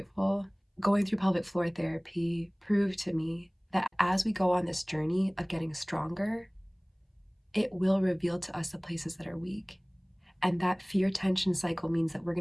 Going through pelvic floor therapy proved to me that as we go on this journey of getting stronger, it will reveal to us the places that are weak. And that fear tension cycle means that we're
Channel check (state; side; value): identical; both; correlation 1.00